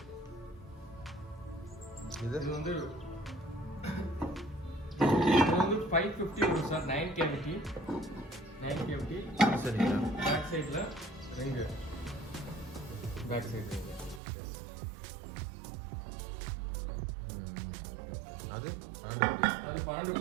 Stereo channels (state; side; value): drops out; left; at 14.2 s